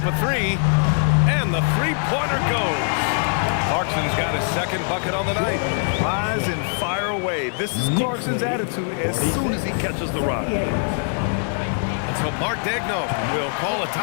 a 3. And the three-pointer goes. Clarkson's got his second bucket on the night. Rise and fire away. This is Clarkson's attitude as soon as he catches the rock. So Mark Daigneault will call a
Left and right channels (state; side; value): silent; right; 60 dB below the other